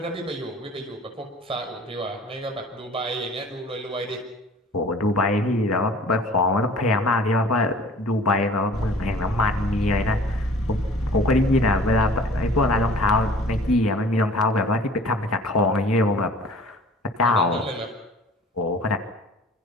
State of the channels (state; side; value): normal; both; correlation 0.48